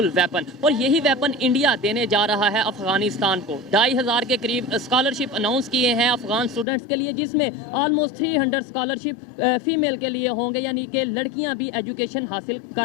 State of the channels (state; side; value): drops out; right; at 6.7 s